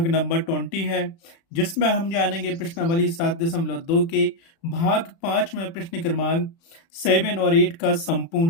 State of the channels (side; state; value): right; late; 36 ms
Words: नंबर 20 है, जिसमें हम जानेंगे प्रश्नावली 7.2 के भाग 5 में प्रश्न क्रमांक 7 और 8 का